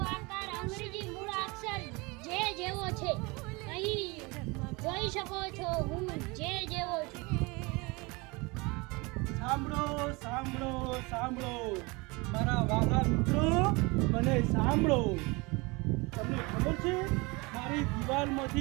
આકાર અંગ્રેજી મૂળાક્ષર જે જેવો છે. અહીં જોઈ શકો છો હું જે જેવો છું. સાંભળો સાંભળો સાંભળો મારા વાલા મિત્રો, મને સાંભળો. તમને ખબર છે મારી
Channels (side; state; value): left; quieter; 26.1 dB